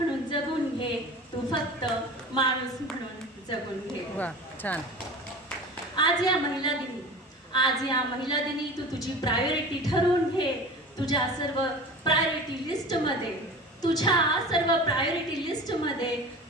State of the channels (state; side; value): normal; both; correlation 0.35